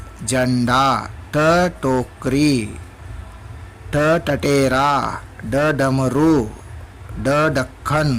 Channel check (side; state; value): both; identical; correlation 1.00